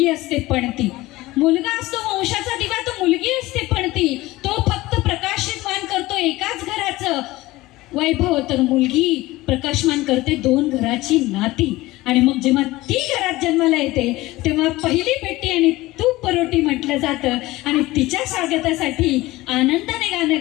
असते पणती. मुलगा असतो वंशाचा दिवा तर मुलगी असते पणती. तो फक्त प्रकाशमान करतो एकाच घराचं वैभव, तर मुलगी प्रकाशमान करते 2 घराची नाती. आणि मग जेव्हा ती घरात जन्माला येते तेव्हा पहिली पेटी आणि तूप परोटी म्हटलं जातं. आणि तिच्या स्वागतासाठी आनंदाने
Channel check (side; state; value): right; quieter; 18.8 dB